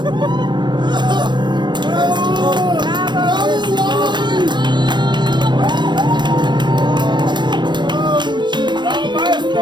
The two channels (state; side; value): late; left; 0.22 ms